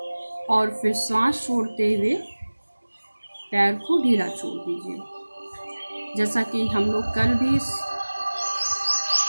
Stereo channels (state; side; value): inverted; both; correlation -1.00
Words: और फिर सांस छोड़ते हुए पैर को ढीला छोड़ दीजिए। जैसा कि हम लोग कल भी इस